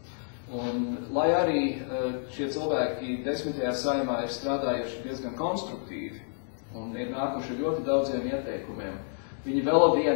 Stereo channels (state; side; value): silent; right; digital silence